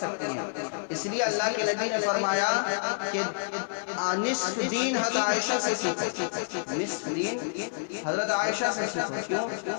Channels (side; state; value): right; silent; digital silence